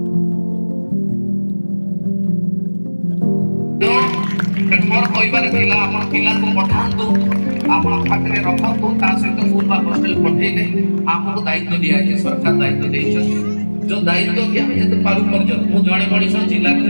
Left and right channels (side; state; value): both; inverted; correlation -1.00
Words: ତେଣୁ ମୋର କହିବାର ଥିଲା ଆପଣ ପିଲାଙ୍କୁ ପଠାନ୍ତୁ, ଆପଣ ପାଖରେ ରଖନ୍ତୁ, ତା ସହିତ ସ୍କୁଲ ବା ହଷ୍ଟେଲ ପଠେଇଲେ ଆମକୁ ଦାୟିତ୍ୱ ଦିଆଯାଇଛି, ସରକାର ଦାୟିତ୍ୱ ଦେଇଛନ୍ତି। ଯୋଉ ଦାୟିତ୍ୱ କି ଆମେ ଯେତେ ପାରୁ ପର୍ଯ୍ୟନ୍ତ ମୁଁ ଜଣେ ମଣିଷ ଜିଲ୍ଲାକୁ